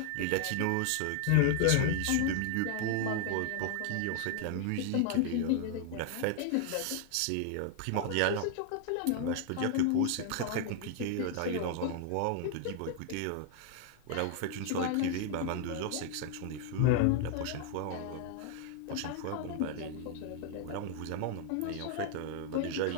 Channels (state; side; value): different; both; correlation 0.00